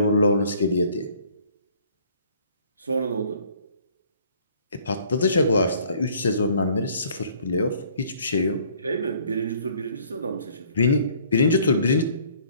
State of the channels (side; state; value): both; inverted; correlation -0.58